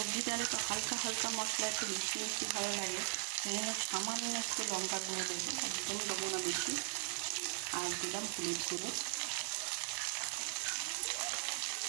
ডালে তো হালকা হালকা মশলা, একটু মিষ্টি মিষ্টি ভালো লাগে, সেই জন্য সামান্য একটু লঙ্কা গুঁড়ো দেবো, একদম দেবো না বেশি। আর দিলাম হলুদ গুঁড়ো।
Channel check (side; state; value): left; silent; 52 dB below the other